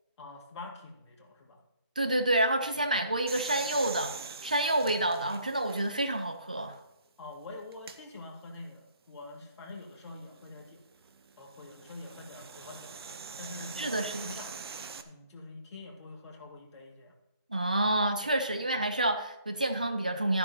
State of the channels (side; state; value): both; inverted; correlation -0.62